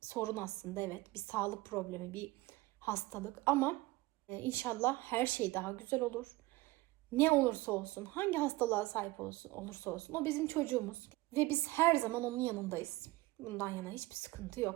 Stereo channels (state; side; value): quieter; left; 20.2 dB